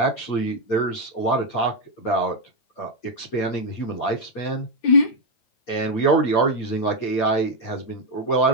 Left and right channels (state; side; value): late; right; 9.1 ms